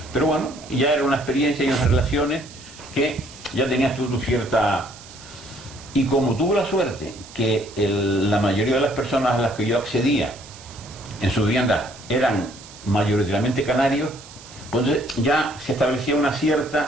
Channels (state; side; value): noise; right; hiss, 19 dB below the sound